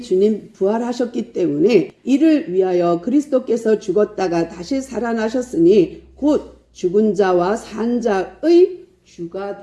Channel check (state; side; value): identical; both; correlation 1.00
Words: 주님 부활하셨기 때문에 이를 위하여 그리스도께서 죽었다가 다시 살아나셨으니 곧 죽은 자와 산 자의 주가